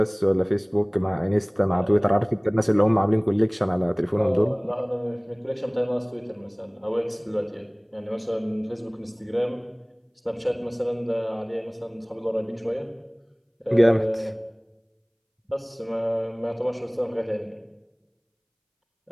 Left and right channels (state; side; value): identical; both; correlation 1.00